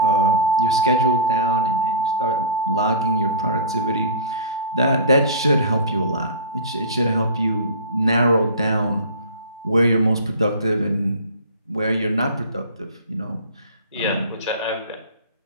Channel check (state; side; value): inverted; both; correlation -0.35